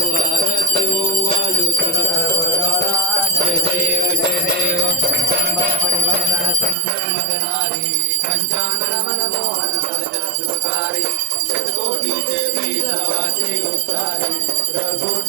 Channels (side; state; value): left; drops out; at 6.8 s